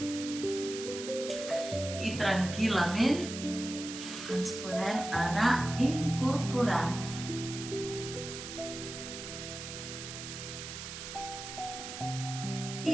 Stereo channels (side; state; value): right; noise; hiss, 9 dB below the sound